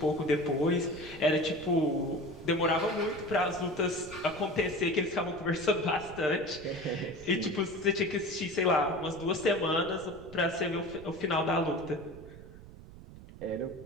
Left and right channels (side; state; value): right; noise; rumble, 17 dB below the sound